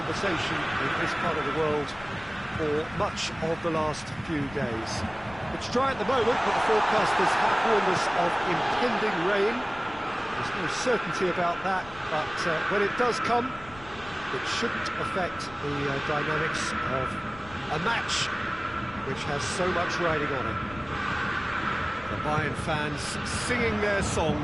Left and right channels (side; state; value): left; noise; rumble, 20 dB below the sound